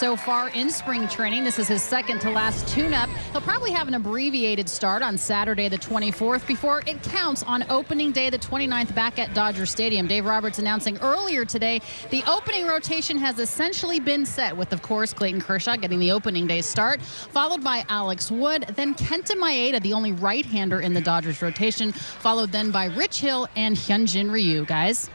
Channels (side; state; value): both; inverted; correlation -1.00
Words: far in spring training. This is his second to last tune-up. He'll probably have an abbreviated start on Saturday the 24th before it counts on opening day the 29th back at Dodger Stadium. Dave Roberts announcing earlier today the opening rotation has essentially been set with, of course, Clayton Kershaw getting the opening day start, followed by Alex Wood, then Kenta Maeda, the only right-hander in the Dodgers rotation, followed then by Rich Hill and Hyunjin Ryu. Guys.